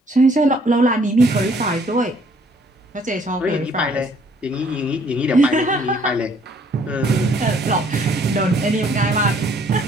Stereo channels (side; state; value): both; normal; correlation 0.62